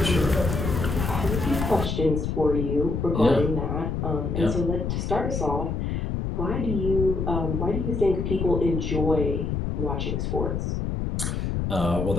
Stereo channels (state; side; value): noise; left; rumble, 1 dB below the sound